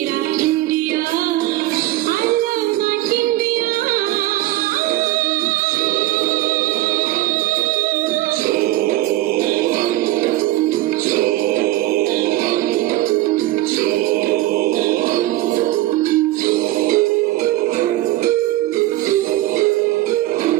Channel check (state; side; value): quieter; left; 16.6 dB